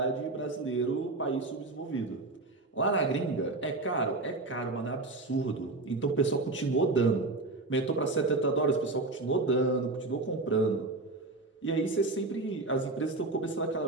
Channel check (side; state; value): left; quieter; 3.2 dB